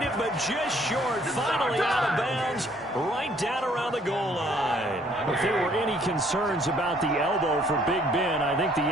it, but just short. Finally out of bounds, right down around the goal line. If there were any concerns about the elbow for Big Ben, I think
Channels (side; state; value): both; normal; correlation 0.62